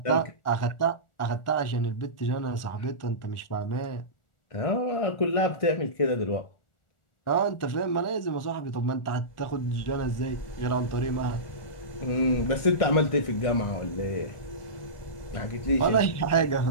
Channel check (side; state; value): right; late; 1.4 ms